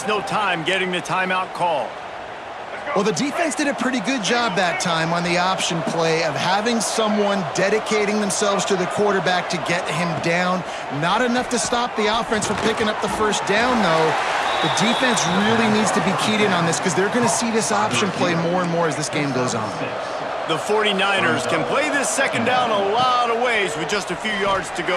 no time getting the timeout called. Well, the defense did a pretty good job that time on the option play of having someone dedicating themselves to the quarterback to get him down. Not enough to stop the offense from picking up the first down, though. The defense really needs to be keyed in on this because they're going to see this option play more and more as this game goes on. The 49ers can play this 2nd down a lot of ways with just a few yards to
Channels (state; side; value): identical; both; correlation 1.00